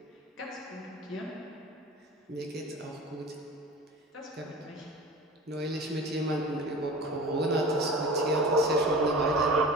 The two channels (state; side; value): normal; both; correlation 0.37